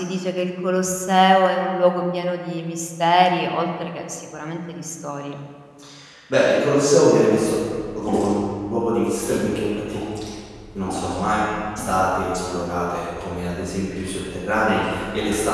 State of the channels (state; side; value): identical; both; correlation 1.00